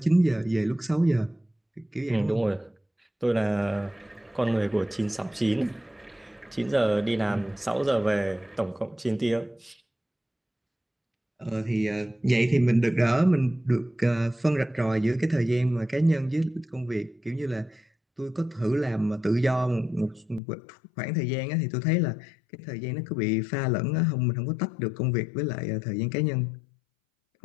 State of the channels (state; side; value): drops out; right; at 20.4 s